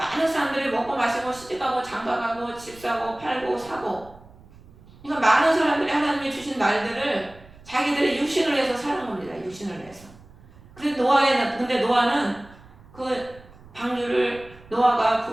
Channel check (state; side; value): noise; right; rumble, 22 dB below the sound